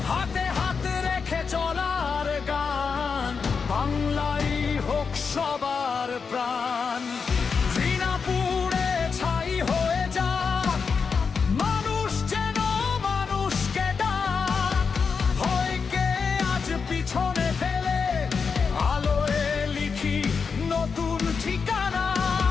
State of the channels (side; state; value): right; quieter; 5.5 dB